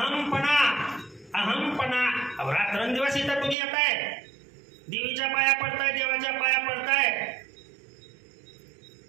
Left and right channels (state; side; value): drops out; left; at 3.6 s